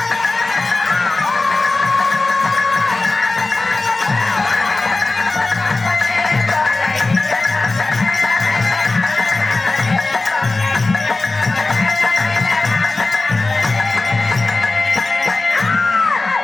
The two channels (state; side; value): quieter; right; 3.3 dB